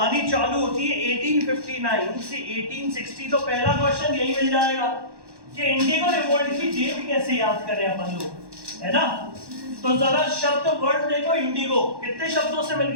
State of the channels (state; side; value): late; left; 1.1 ms